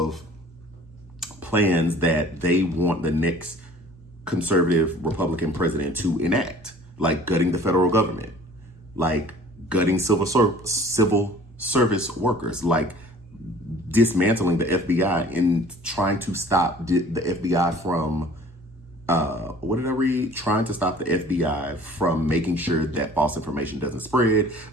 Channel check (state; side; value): normal; both; correlation 0.50